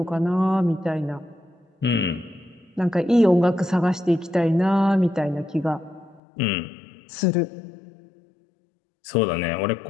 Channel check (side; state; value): right; drops out; at 6.2 s